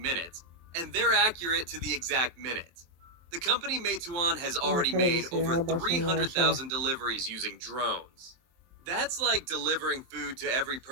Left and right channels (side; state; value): left; late; 23 ms